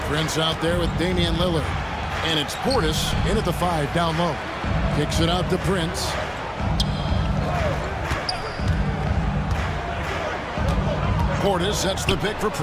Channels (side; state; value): both; identical; correlation 1.00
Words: Prince out there with Damian Lillard. And it's Portis in at the 5 down low. Kicks it out to Prince. Portis sets the pick for